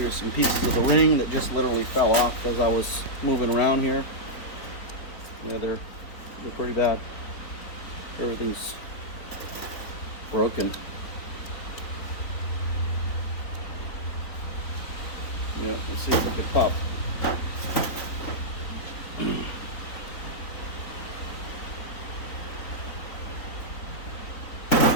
some pieces of the ring that just literally fell off as I was moving around here. You know, they're pretty bad. Everything's broken. You know, let's see if I can pop.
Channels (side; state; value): right; late; 3.9 ms